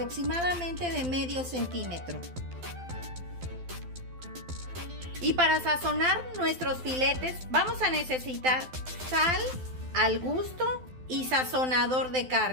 de medio centímetro. Y para sazonar nuestros filetes vamos a necesitar sal al gusto y sazonador de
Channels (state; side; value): late; left; 12 ms